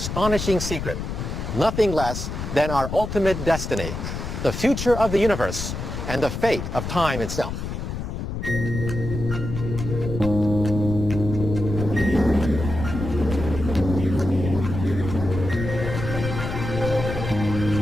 secret. Nothing less than our ultimate destiny, the future of the universe, and the fate of time itself.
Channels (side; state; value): left; noise; rumble, 5 dB below the sound